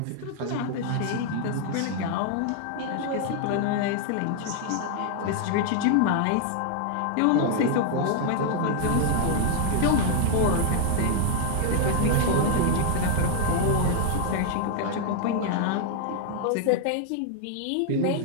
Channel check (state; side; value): different; both; correlation 0.00